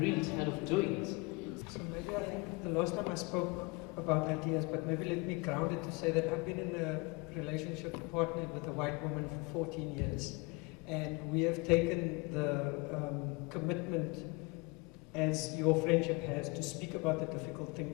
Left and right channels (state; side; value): quieter; right; 27.2 dB